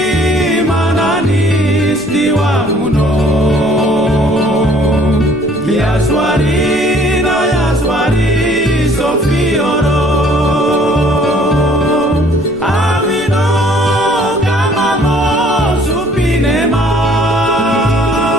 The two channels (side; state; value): right; noise; rumble, 20 dB below the sound